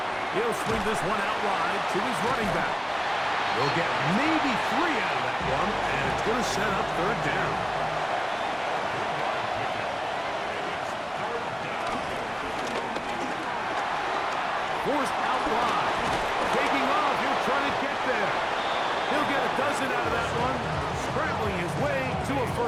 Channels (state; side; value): identical; both; correlation 1.00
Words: He'll swing this one out wide to his running back. He'll get maybe 3 out of that one, and it's going to set up 3rd down. Forced out wide. Taking off, he'll try to get there. He'll get a dozen out of that one, scrambling his way to a